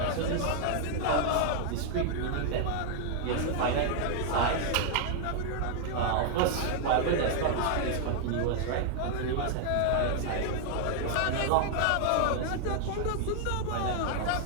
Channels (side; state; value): both; different; correlation 0.00